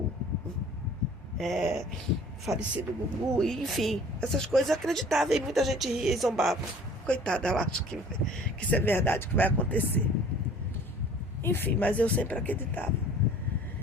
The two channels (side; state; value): both; normal; correlation 0.50